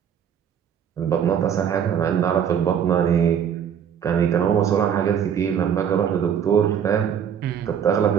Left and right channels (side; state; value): left; quieter; 8.4 dB